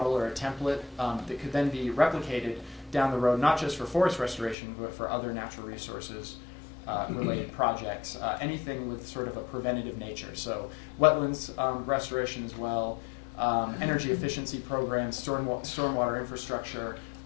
or a template that could then be replicated down the road, not just for forest restoration, but for other natural resources related projects, anything with sort of a preventative nature. So wetlands restoration as well, energy efficiency programs, stormwater infrastructure,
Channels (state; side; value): drops out; right; at 4.5 s